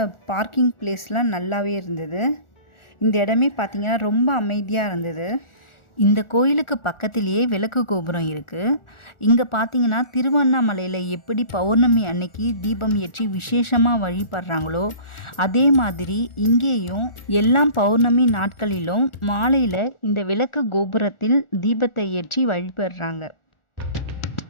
பார்க்கிங் பிளேஸ்லாம் நல்லாவே இருந்தது. இந்த இடமே பார்த்திங்கன்னா ரொம்ப அமைதியாக இருந்தது. இந்த கோயிலுக்கு பக்கத்திலேயே விளக்கு கோபுரம் இருக்குது. இங்கே பார்த்தீங்கன்னா திருவண்ணாமலையில் எப்படி பௌர்ணமி அன்னைக்கு தீபம் ஏற்றி விசேஷமாக வழிபடுறாங்களோ அதே மாதிரி இங்கேயும் எல்லா பௌர்ணமி நாட்களிலும் மாலையில் இந்த விளக்கு கோபுரத்தில் தீபத்தை ஏற்றி வழிபடுறாங்க.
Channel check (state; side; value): late; right; 1.4 ms